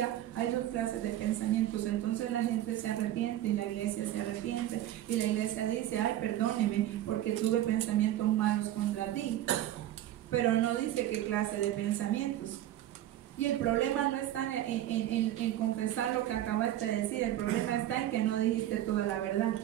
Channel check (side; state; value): left; quieter; 13.0 dB